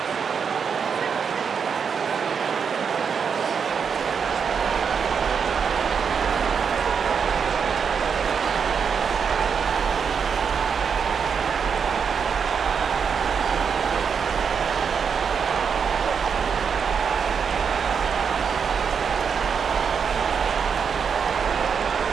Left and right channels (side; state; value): left; quieter; 6.5 dB